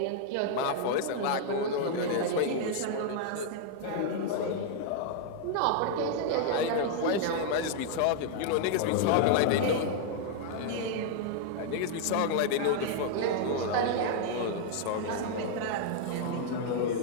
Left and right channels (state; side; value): different; both; correlation 0.00